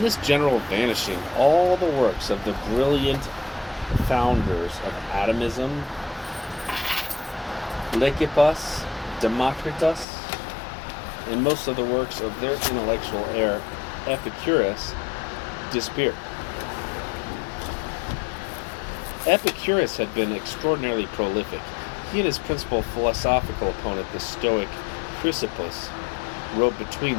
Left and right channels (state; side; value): drops out; right; at 10.1 s